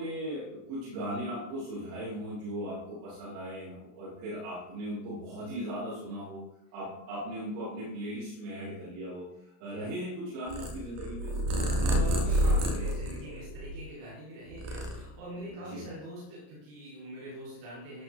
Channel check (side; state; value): left; late; 33 ms